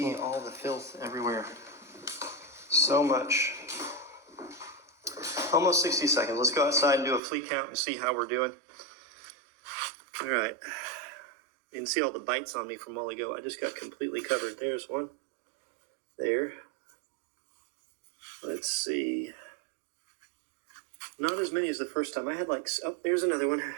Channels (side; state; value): left; drops out; at 7.2 s